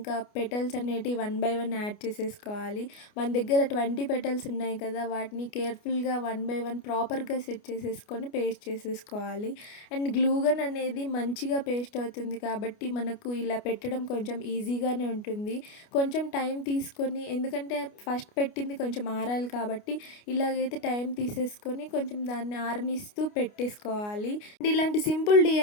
పెటల్స్ అనేటివి 1 బై 1 యాడ్ చేసేసుకోవాలి. మన దగ్గర 20 పెటల్స్ ఉన్నాయి కదా, వాటిని కేర్ఫుల్గా 1 బై 1 ప్రాపర్గా సెట్ చేసేసుకొని పేస్ట్ చేసేసుకోవాలి. అండ్ గ్లూగన్ అనేది మంచిగా పేస్ట్ అవుతుంది కాబట్టి మనకు ఇలా పెట్టడం కొంచెం ఈజీగానే ఉంటుంది. కొంచెం టైం తీసుకొని, ఎందుకంటే ఫస్ట్ పెట్టింది కొంచెం ఆరాలి కాబట్టి ఇలాగైతే టైం తీసేసుకొని కొంచెం దాన్ని ఆరనిస్తూ పెట్టేసుకోవాలి. అండ్ ఇలాంటి సింపుల్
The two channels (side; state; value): right; late; 29 ms